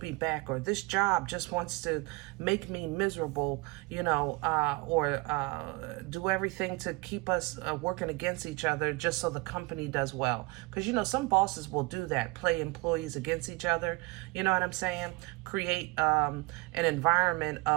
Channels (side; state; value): left; quieter; 25.4 dB